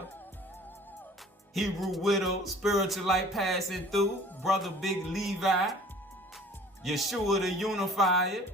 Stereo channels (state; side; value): normal; both; correlation 0.49